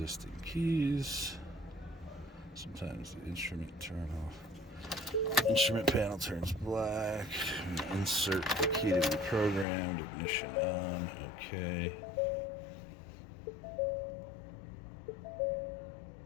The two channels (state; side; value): drops out; right; at 9.7 s